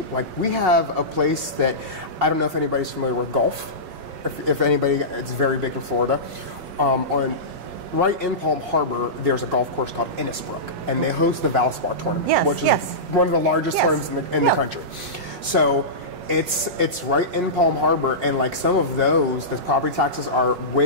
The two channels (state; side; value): late; left; 5.5 ms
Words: Like we have a place that, I don't know if anybody's familiar with golf. If anybody, it's very big in Florida. Right in Palm Harbor, there's a golf course called Innisbrook, and they host the Valspar tournament, which is one of the largest tournaments in the country. So it's right in Palm Harbor, and like some of those, the property taxes are way